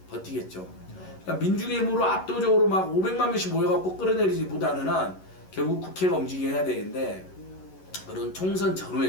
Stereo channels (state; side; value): late; right; 11 ms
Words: 버티겠죠. 그러니까 민중의힘으로 압도적으로 막 500만 명씩 모여갖고 끌어내리지 보다는 결국 국회가 움직여야 해야 되는데 그런 총선